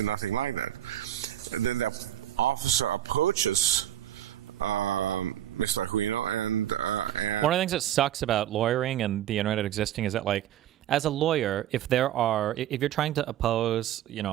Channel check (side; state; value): left; quieter; 12.0 dB